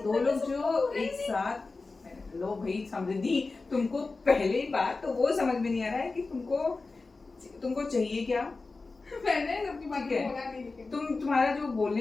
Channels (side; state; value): right; quieter; 3.8 dB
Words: लोग जो एक साथ। लो भाई समृद्धि, तुमको पहले बात तो वो समझ में नहीं आ रहा है कि तुमको चाहिए क्या। मैंने सबकी बात ठीक है। बोला नहीं, लेकिन तुम्हारा जो